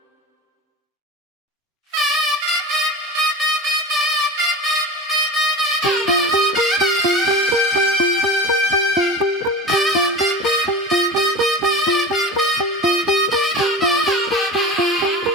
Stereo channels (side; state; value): both; normal; correlation 0.30